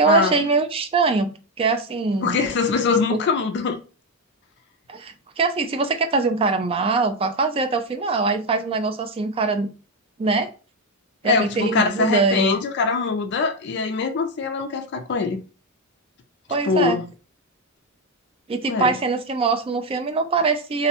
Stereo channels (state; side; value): normal; both; correlation 0.06